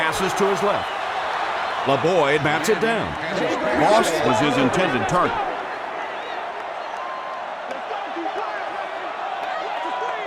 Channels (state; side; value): identical; both; correlation 1.00